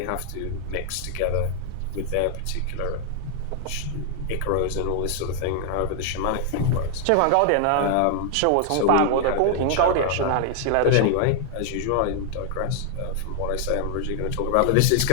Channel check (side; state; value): both; different; correlation 0.00